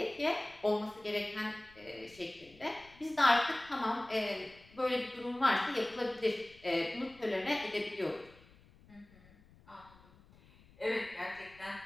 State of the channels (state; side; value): noise; left; rumble, 25 dB below the sound